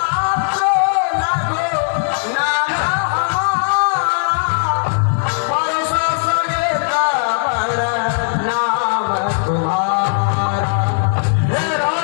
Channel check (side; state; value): right; silent; digital silence